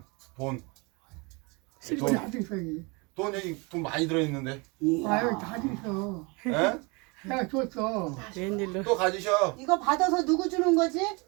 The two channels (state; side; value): quieter; left; 28.7 dB